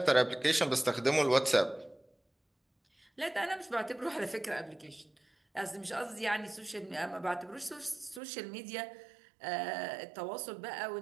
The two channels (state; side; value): drops out; left; at 8.2 s